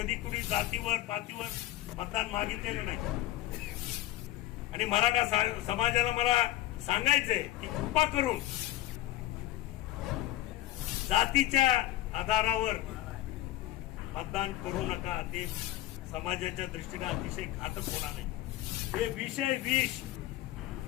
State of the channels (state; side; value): quieter; right; 15.7 dB